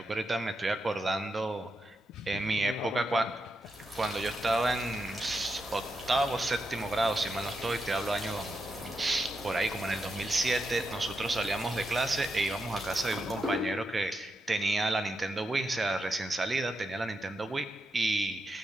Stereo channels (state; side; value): normal; both; correlation 0.85